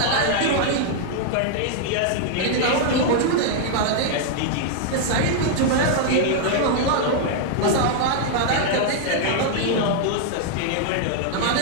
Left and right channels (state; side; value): different; both; correlation -0.01